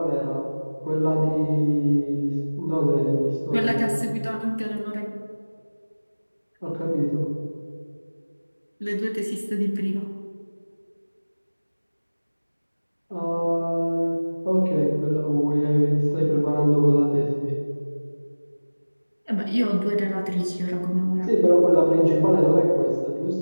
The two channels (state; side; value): inverted; both; correlation -1.00